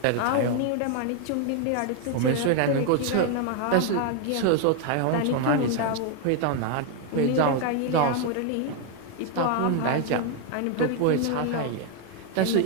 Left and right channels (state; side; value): different; both; correlation 0.00